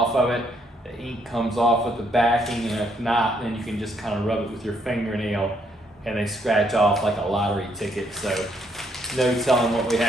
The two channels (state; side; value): normal; both; correlation 0.72